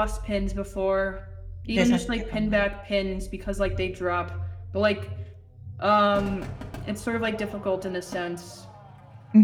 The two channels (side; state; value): both; identical; correlation 1.00